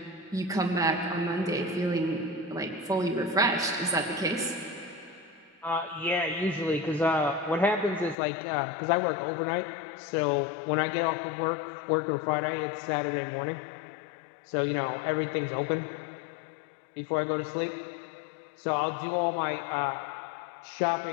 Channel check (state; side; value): drops out; right; at 8.2 s